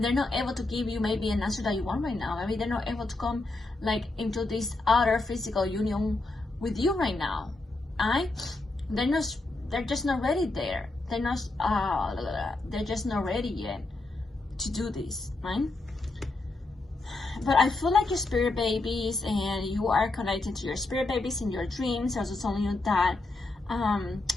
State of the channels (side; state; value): right; quieter; 3.1 dB